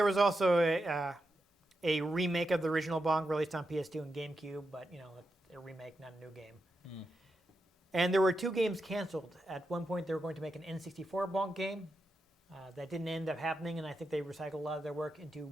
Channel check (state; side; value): normal; both; correlation 0.87